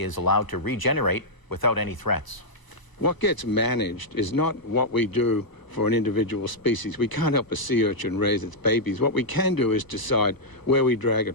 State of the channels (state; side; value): late; right; 1.0 ms